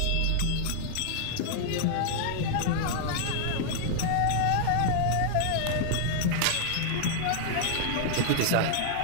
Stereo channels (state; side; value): different; both; correlation 0.00